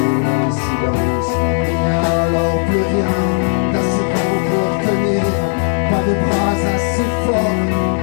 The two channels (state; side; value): silent; right; digital silence